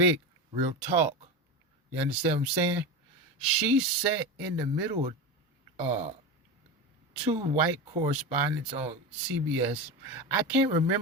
real talk. You understand what I'm saying? She sat in the middle of two white correspondents on CBS. I can't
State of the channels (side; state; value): both; normal; correlation 0.22